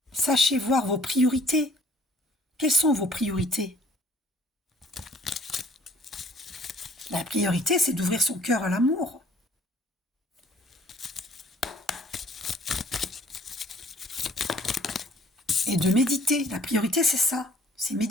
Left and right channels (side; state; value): both; normal; correlation 0.56